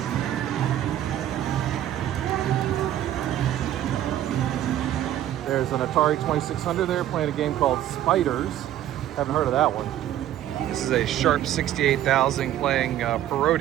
There's an Atari 2600 there playing a game called Spiders. Haven't heard of that one. This is a Sharp 68,000 playing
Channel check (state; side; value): quieter; left; 12.2 dB